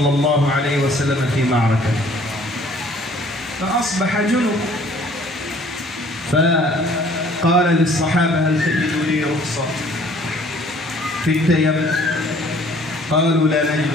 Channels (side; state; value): both; normal; correlation 0.56